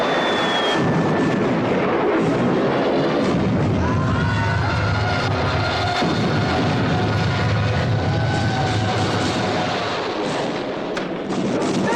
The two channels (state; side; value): identical; both; correlation 1.00